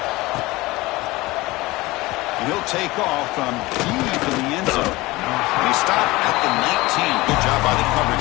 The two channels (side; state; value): right; quieter; 20.6 dB